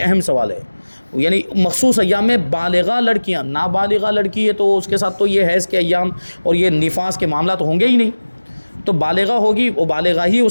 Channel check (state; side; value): inverted; both; correlation -1.00